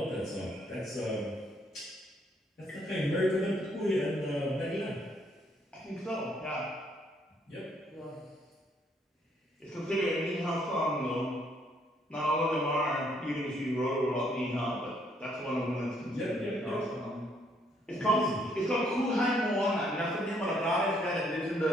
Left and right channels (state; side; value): normal; both; correlation 0.69